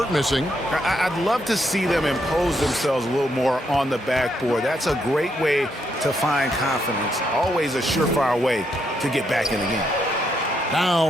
missing. I'd love to see them impose themselves a little more on the backboard. That's a great way to find confidence. Always a surefire way to get back in the game.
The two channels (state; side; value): normal; both; correlation 0.77